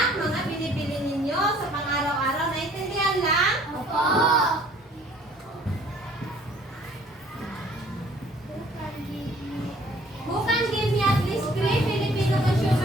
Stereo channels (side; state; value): both; normal; correlation 0.56